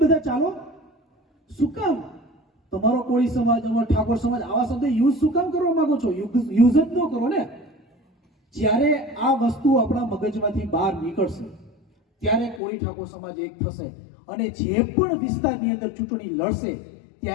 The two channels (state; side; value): drops out; right; at 12.6 s